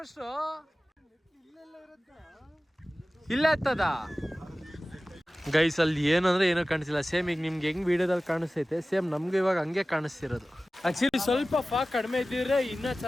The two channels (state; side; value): normal; both; correlation 0.96